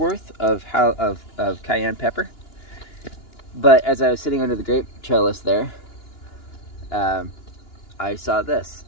of cayenne pepper. But as I was sitting under the grape trellis there, I saw this.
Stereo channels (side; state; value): right; late; 2.9 ms